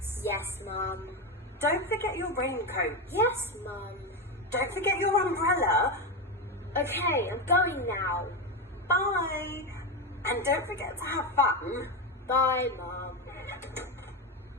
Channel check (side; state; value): both; normal; correlation 0.13